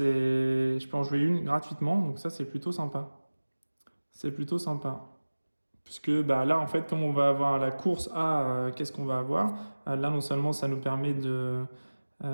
peux en jouer une gratuitement, donc ça, c'est plutôt sympa. C'est plutôt sympa. Puisque là, en fait, comme on va avoir la course à qu'est-ce qu'on va avoir, là, non seulement ça nous permet de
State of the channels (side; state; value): both; inverted; correlation -1.00